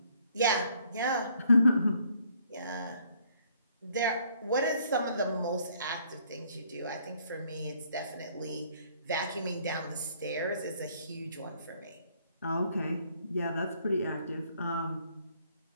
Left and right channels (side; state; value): both; inverted; correlation -0.64